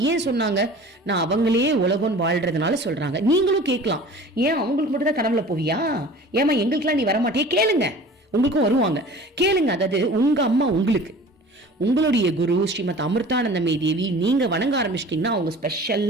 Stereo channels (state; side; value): normal; both; correlation 0.43